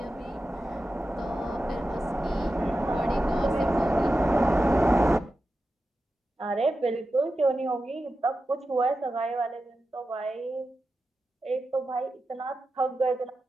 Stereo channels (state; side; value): normal; both; correlation 0.91